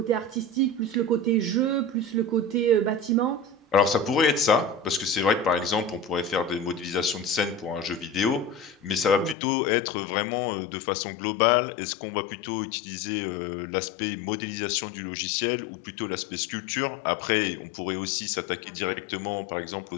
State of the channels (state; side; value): drops out; right; at 9.3 s